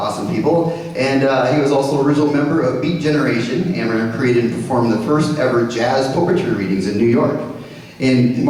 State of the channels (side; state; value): both; identical; correlation 1.00